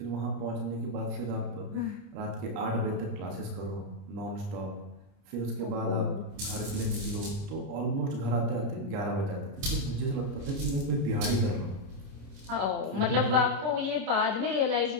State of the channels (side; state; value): left; late; 30 ms